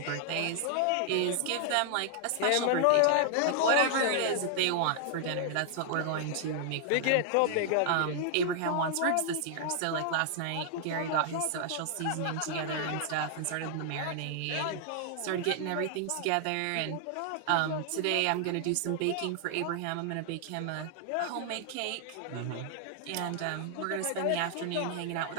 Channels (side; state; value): both; different; correlation 0.00